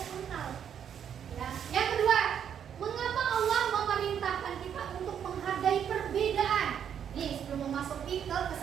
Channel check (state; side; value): quieter; left; 8.6 dB